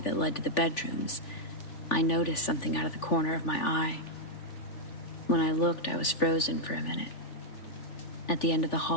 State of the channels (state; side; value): late; right; 3.4 ms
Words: led to the bedrooms, I noticed something out of the corner of my eye. When I looked, I was frozen for a minute. At the end of the